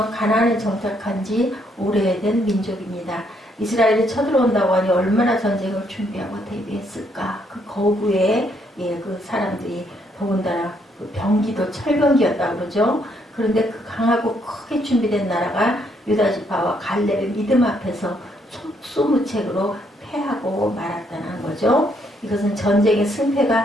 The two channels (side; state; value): both; normal; correlation 0.72